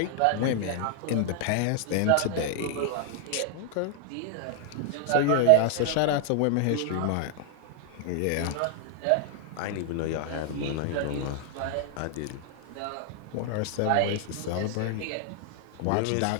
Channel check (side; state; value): both; different; correlation 0.00